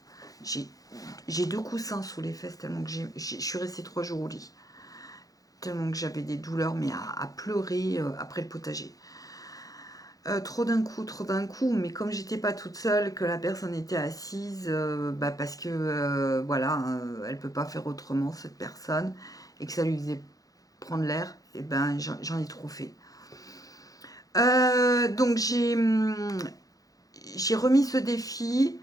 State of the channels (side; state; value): right; late; 0.17 ms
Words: J'ai 2 coussins sous les fesses tellement que je suis restée 3 jours au lit. Tellement que j'avais des douleurs, mais à pleurer après le potager. Trop d'un coup, mais comme j'étais pas toute seule, que la personne était assise, parce que voilà, elle peut pas faire autrement cette personne, et que ça lui faisait prendre l'air, et ben j'en ai trop fait. Donc j'ai remis ce défi.